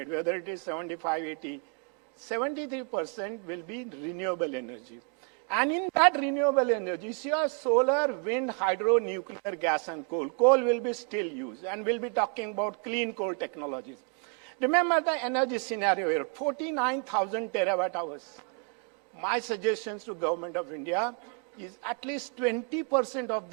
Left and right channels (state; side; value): quieter; left; 38.3 dB